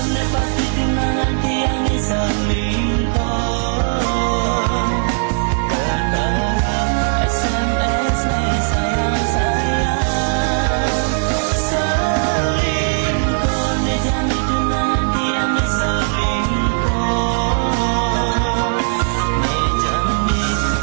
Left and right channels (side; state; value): left; silent; 67 dB below the other